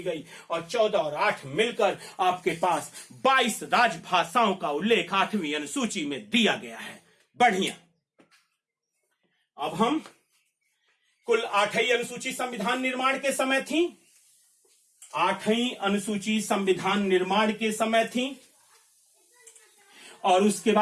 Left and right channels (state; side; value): identical; both; correlation 1.00